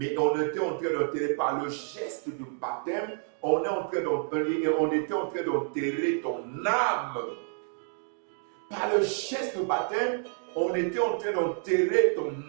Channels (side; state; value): left; silent; 59 dB below the other